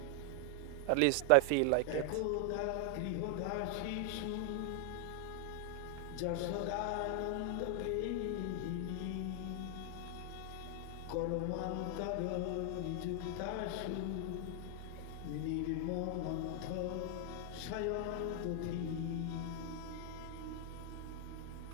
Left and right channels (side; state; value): both; different; correlation 0.00